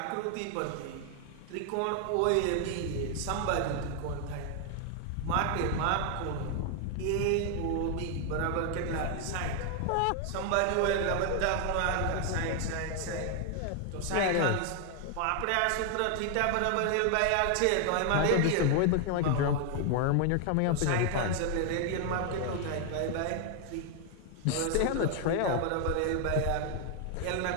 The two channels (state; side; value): different; both; correlation 0.00